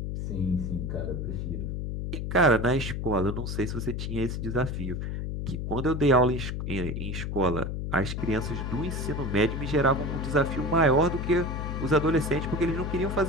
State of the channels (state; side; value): noise; left; hum, 3 dB below the sound